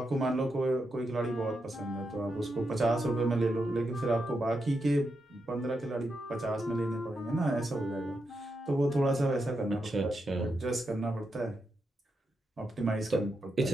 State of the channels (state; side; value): normal; both; correlation 0.85